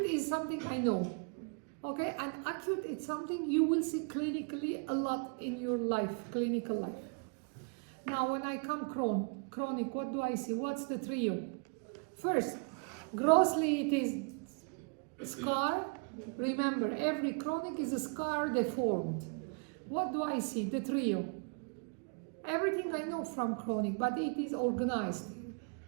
is something I know. Okay, and acute it's something you will see clinically a lot in your life, clinical life. Now when I come chronic, what do I see? What's the trio? First, grossly it is scar. Remember, every chronic is a scar deformed. What do I see? The trio. Everything I know from chronic, but it is organized.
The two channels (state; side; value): quieter; left; 37.5 dB